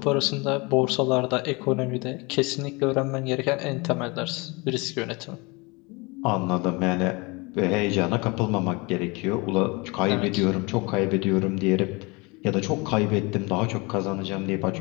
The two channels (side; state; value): right; quieter; 26.9 dB